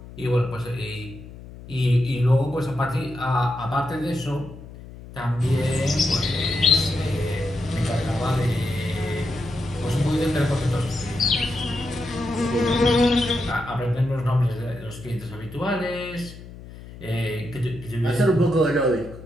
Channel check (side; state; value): left; noise; hum, 16 dB below the sound